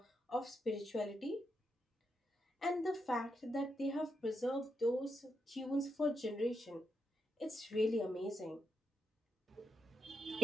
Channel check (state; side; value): normal; both; correlation 0.83